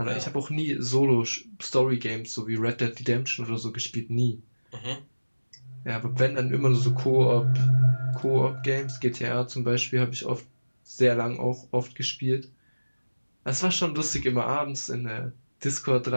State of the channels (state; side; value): inverted; both; correlation -1.00